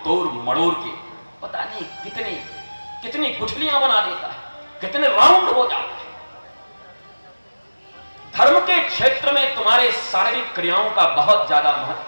तोड़ मड़ोड़ के पता नहीं कितनी गुठलियां बना देता है, कितने राउंड हो जाते हैं। धर्म के क्षेत्र में तुम्हारे शारीरिक क्रियाओं का बहुत ज्यादा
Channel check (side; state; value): both; inverted; correlation -1.00